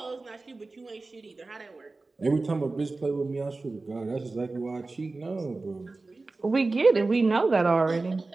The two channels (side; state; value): left; quieter; 3.5 dB